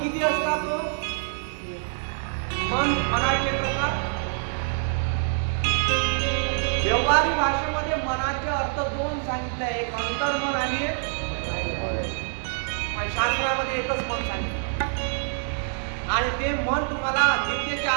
असतात? मनाचे प्रकार व्यवहारिक भाषेमध्ये मनाचे अर्थ दोन सांगितले, एक अंतर्मन आणि शास्त्रामध्ये एकच मन सांगितलं. आणि ते मन तुम्हाला गीतेच्या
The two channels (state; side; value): silent; left; digital silence